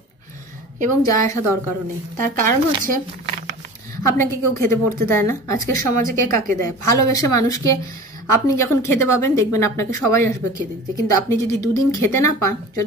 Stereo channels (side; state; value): both; normal; correlation 0.38